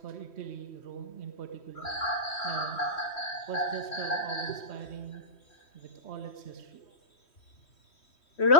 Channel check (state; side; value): late; right; 3.1 ms